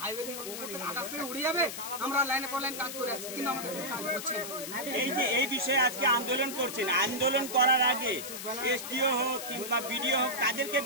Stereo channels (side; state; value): left; noise; hiss, 8 dB below the sound